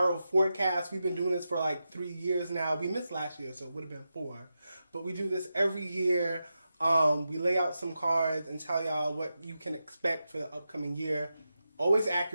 forecast. We've been doing this for like 3 years now. We missed last year, so it would have been 4. But we do this every year. We lay out some cards and tell y'all what you can expect for the upcoming year. Always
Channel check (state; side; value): inverted; both; correlation -0.90